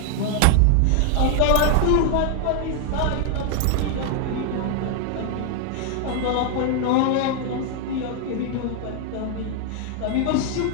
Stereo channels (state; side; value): different; both; correlation 0.00